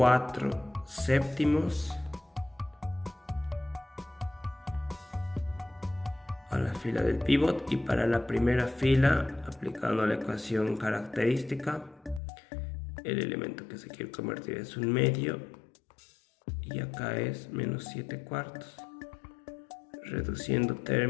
séptimos a la fila del pivot, y para la primera fila, aplicando la ecuación característica, el elemento que se quiere convertir es un medio, y acá es menos 7 cuartos. Reduciendo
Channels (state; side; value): drops out; right; at 12.2 s